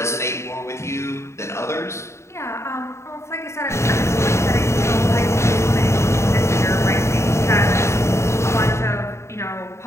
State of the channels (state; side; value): late; right; 0.13 ms